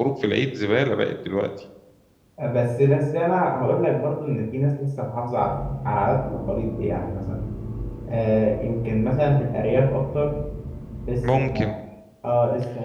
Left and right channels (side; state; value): both; identical; correlation 1.00